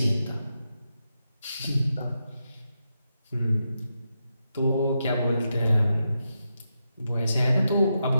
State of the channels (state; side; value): inverted; both; correlation -0.86